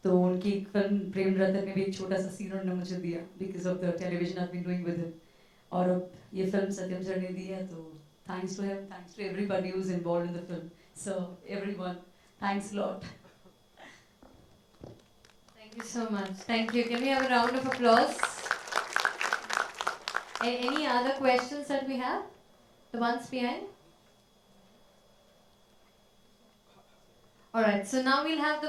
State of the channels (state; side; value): identical; both; correlation 1.00